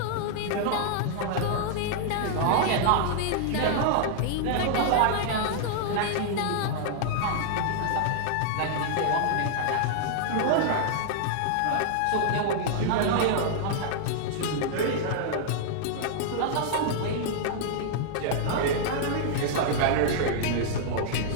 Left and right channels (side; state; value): both; different; correlation -0.01